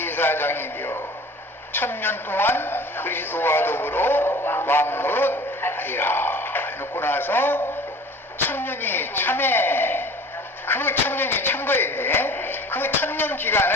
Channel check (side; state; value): both; normal; correlation 0.44